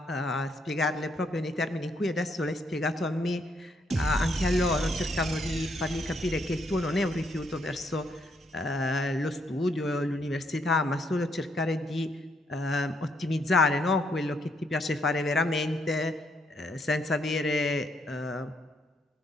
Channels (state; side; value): normal; both; correlation 0.74